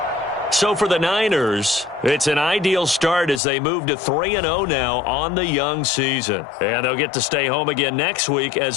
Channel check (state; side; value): drops out; right; at 3.4 s